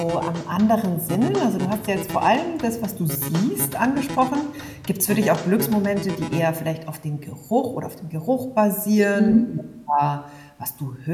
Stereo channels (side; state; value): both; identical; correlation 1.00